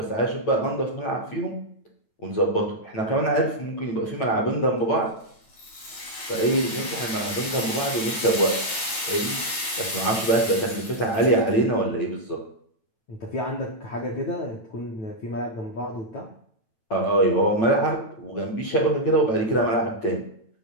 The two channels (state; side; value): late; right; 9.0 ms